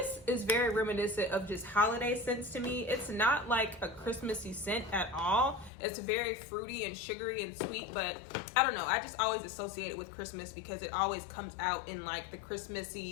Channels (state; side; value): drops out; right; at 5.7 s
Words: very reminiscent of just holiday scents to me. It's not like a Christmassy scent at all. It's very fruity and sugary and sweet, but I don't know. I just always associate it with Christmas because it always comes out in like the